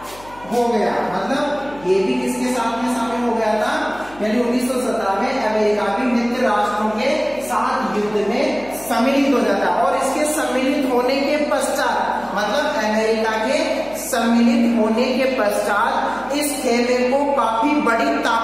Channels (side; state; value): left; noise; hum, 22 dB below the sound